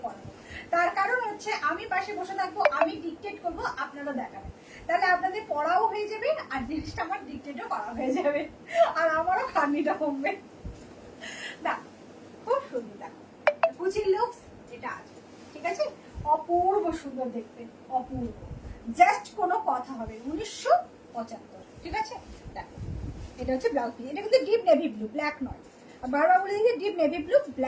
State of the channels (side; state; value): both; identical; correlation 1.00